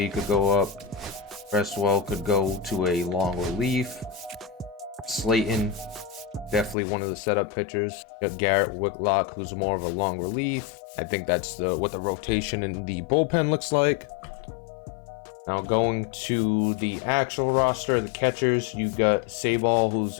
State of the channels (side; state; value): right; drops out; at 6.8 s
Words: could go up. Cresswell could go to a long relief. Slayton, definitely one of the setup pitchers. You got Garrett Whitlock, who's more of a long relief. I think that's what the rotation in the bullpen looks like. Now going to the actual roster, the catchers, you got Sabal, who's